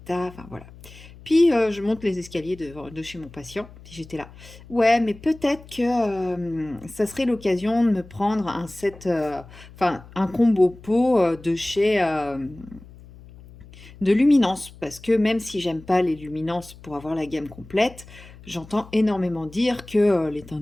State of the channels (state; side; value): noise; left; hum, 20 dB below the sound